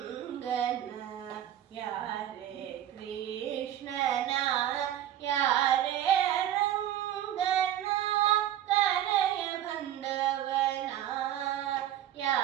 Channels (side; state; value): left; quieter; 11.6 dB